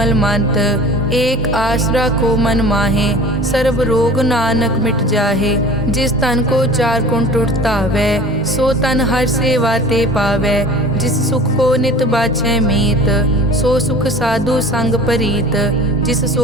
मंत। एक आसरा को मन माहे, सर्व रोग नानक मिट जाहे। जिस तन को चार गुण टुटतावै, सो तन हर सेवा ते पावै। जिस सुख को नित बाछै मीत, सो सुख साधु संग परीत। जिस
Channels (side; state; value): both; normal; correlation 0.41